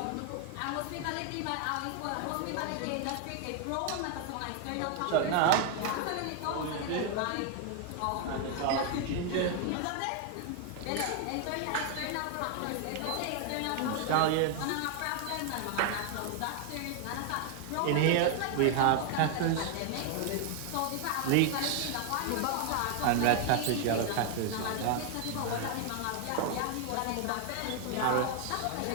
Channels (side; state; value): both; different; correlation 0.00